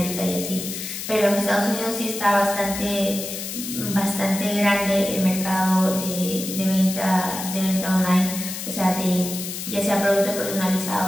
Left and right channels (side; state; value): left; noise; hiss, 7 dB below the sound